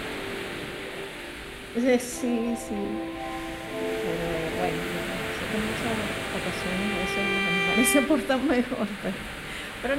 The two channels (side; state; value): both; identical; correlation 1.00